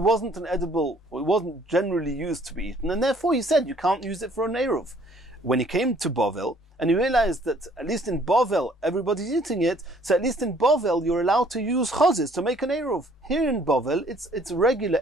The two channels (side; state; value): both; normal; correlation 0.59